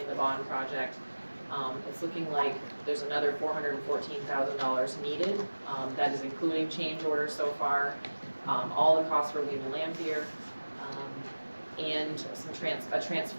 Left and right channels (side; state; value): both; inverted; correlation -1.00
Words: the bond project, it's looking like there's another $414,000 needed. That is including change orders so far, all the costs for Lehman Lampier, and a